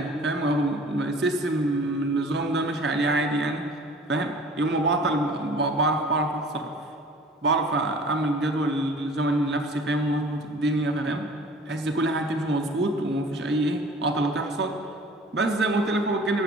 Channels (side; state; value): both; normal; correlation 0.47